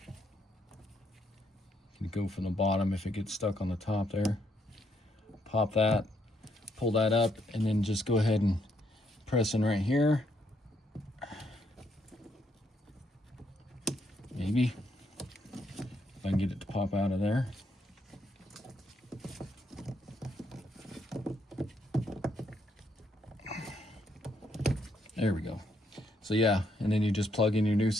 You can go from the bottom if it gets stuck on the top there. Pop that, pull that up, and then just go ahead and press in right here. Maybe if I can get it to pop out of there. There we go. So yeah, and then you just plug in your new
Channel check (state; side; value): normal; both; correlation 0.74